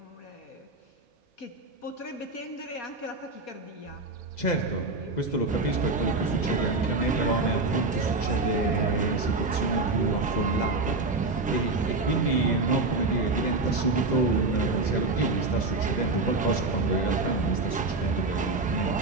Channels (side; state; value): left; quieter; 3.3 dB